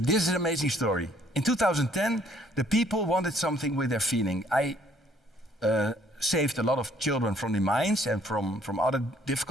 is an amazing story. In 2010, the people wanted something with their feeling. I saved a lot of children from the mines and from other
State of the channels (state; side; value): normal; both; correlation 0.63